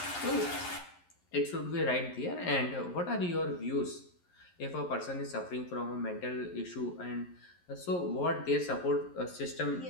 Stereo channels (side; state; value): right; late; 11 ms